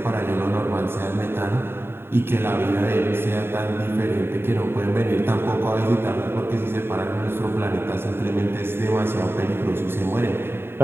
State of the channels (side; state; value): left; late; 0.11 ms